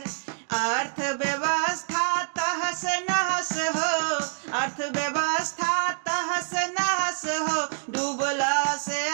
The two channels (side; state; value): left; silent; digital silence